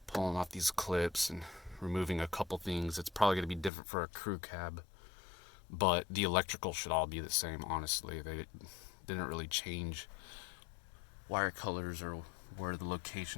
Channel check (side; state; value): right; drops out; at 3.7 s